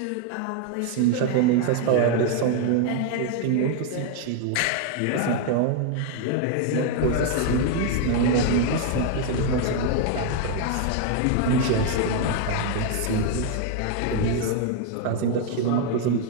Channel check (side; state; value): both; different; correlation 0.00